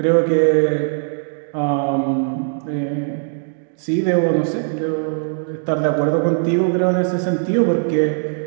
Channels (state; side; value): silent; left; digital silence